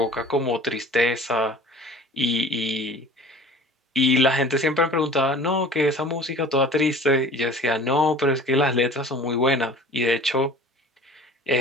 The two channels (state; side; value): normal; both; correlation 0.44